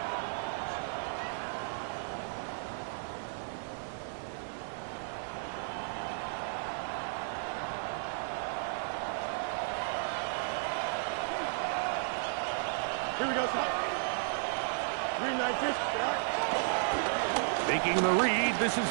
Here we go, son. Green 9-6. Making the read, this is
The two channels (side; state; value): left; silent; 55 dB below the other